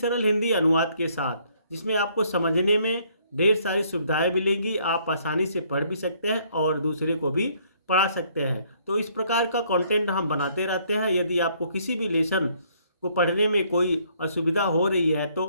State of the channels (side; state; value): both; inverted; correlation -0.65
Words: हिंदी अनुवाद के साथ, जिसमें आपको समझने में ढेर सारी सुविधाएं मिलेंगी। आप आसानी से पढ़ भी सकते हैं और दूसरे को भी पढ़ा सकते हैं। तो इस प्रकार का कंटेंट हम बनाते रहते हैं। यदि आपको किसी भी लेसन को पढ़ने में कोई असुविधा हो रही है तो